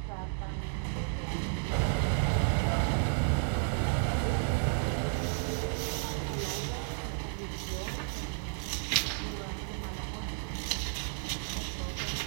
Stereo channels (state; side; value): silent; left; 56 dB below the other